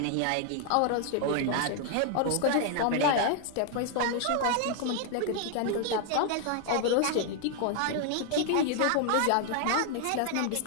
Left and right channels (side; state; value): both; different; correlation 0.00